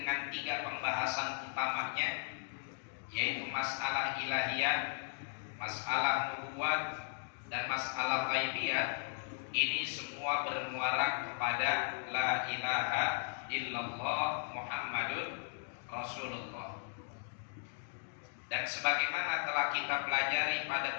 3 pembahasan utamanya, yaitu masalah ilahiyah, masalah nubuat, dan masalah ghaibiyah, ini semua bermuara kepada la ilaha illallah Muhammadun Rasulullah. Dan sebagaimana telah kita pelajari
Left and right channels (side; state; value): right; silent; digital silence